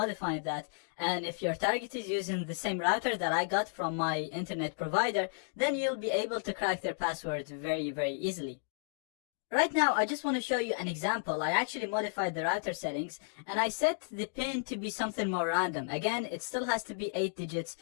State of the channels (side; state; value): right; silent; digital silence